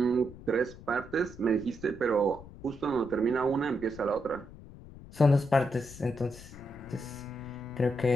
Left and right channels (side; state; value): left; noise; rumble, 17 dB below the sound